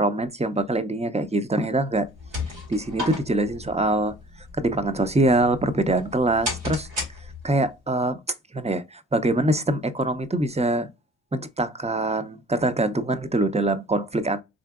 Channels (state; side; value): normal; both; correlation 0.50